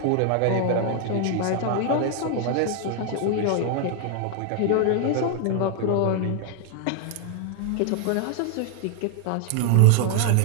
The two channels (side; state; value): both; different; correlation 0.00